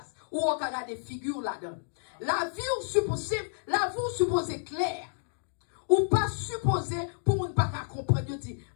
Ou on a des figures là-dedans. La vie ou supposée claire. Ou pas supposé pour ne pas comprendre. Je dis,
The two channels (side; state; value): right; silent; digital silence